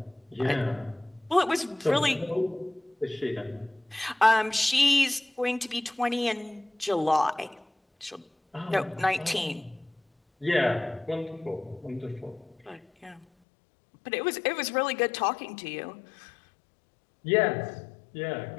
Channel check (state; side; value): drops out; right; at 13.2 s